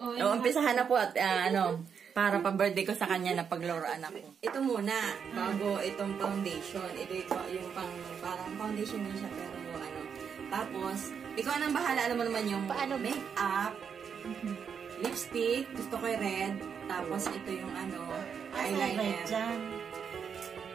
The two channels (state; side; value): quieter; left; 7.0 dB